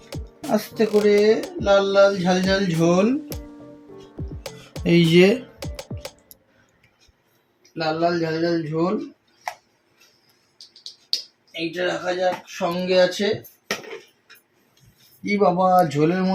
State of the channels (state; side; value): identical; both; correlation 1.00